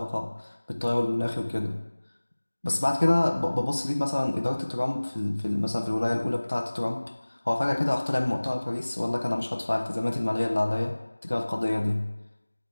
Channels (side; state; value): both; inverted; correlation -1.00